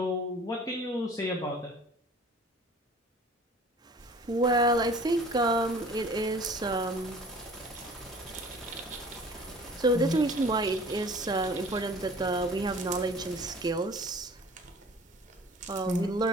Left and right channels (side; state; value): both; normal; correlation 0.47